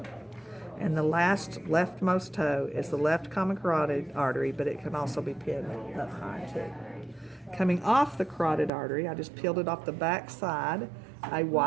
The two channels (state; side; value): drops out; left; at 8.7 s